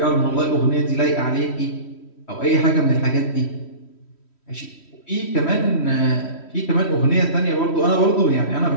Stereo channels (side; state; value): right; late; 3.1 ms